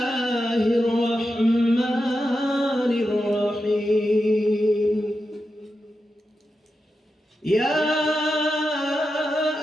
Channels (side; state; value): both; normal; correlation 0.89